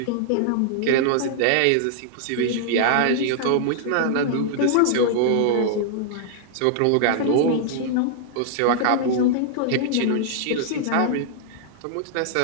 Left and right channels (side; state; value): both; different; correlation -0.01